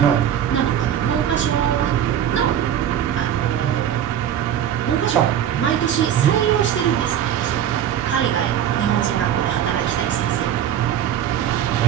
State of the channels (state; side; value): quieter; left; 10.0 dB